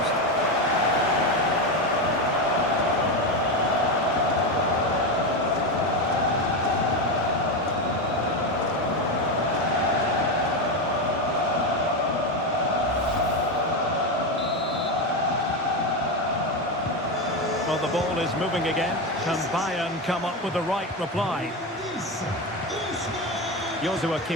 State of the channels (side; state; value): both; normal; correlation 0.14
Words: Well, the ball is moving again. Can Bayern come up with the right reply? Joshua